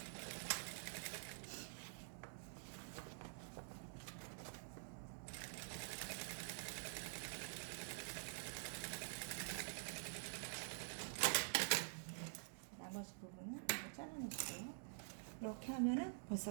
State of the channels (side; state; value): left; silent; digital silence